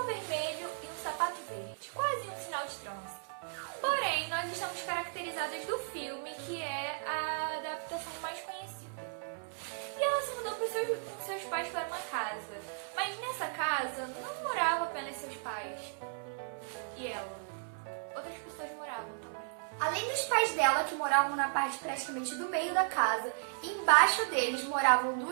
vermelho e um sapato verde, quase um sinal de trânsito. Porém, nós estamos caracterizadas do filme, que é a adaptação mais conhecida. E ela se mudou com seus pais para uma casa, mas nessa casa não moravam apenas seus pais e ela. Outras pessoas moravam também. Além dos pais dela, que moravam na parte praticamente do meio da casa, embaixo deles moravam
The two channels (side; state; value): left; silent; 54 dB below the other